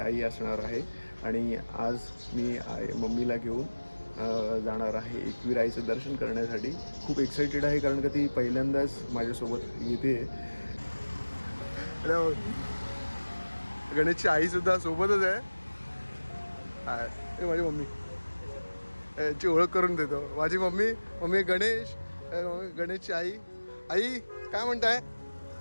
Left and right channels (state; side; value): inverted; both; correlation -1.00